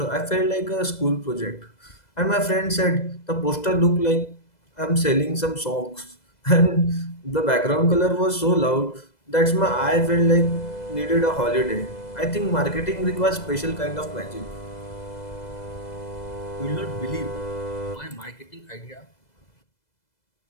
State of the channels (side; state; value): right; late; 2.0 ms